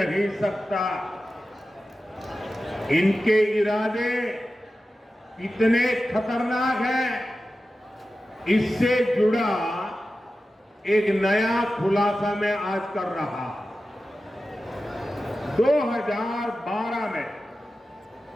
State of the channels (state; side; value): normal; both; correlation 0.93